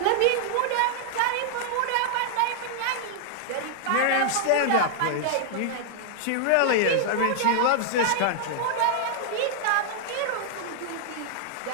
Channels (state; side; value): different; both; correlation -0.01